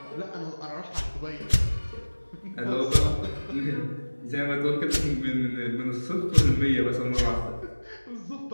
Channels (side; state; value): both; inverted; correlation -1.00